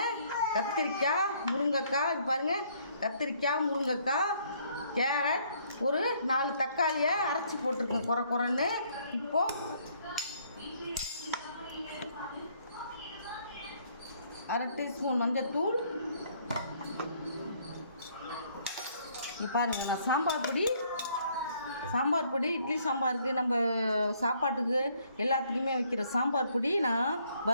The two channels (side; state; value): both; inverted; correlation -0.65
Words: கத்திரிக்காய், முருங்கைக்காய், இது பாருங்கள், கத்திரிக்காய், முருங்கைக்காய், கேரட், ஒரு 4 தக்காளியை அரைச்சி போட்டிருக்கேன் குறைன்னு. இப்போது 1/2 டீஸ்பூன் மஞ்சள்தூள். இப்போ பாருங்கள், நான் சாம்பார் பொடி இட்லி சாம்பாருக்கு, நம்ம சாப்பாட்டுக்கு எல்லாத்துலேயுமே வைக்கிற சாம்பார் பொடி நான்